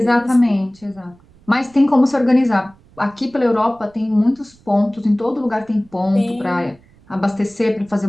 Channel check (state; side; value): noise; right; rumble, 28 dB below the sound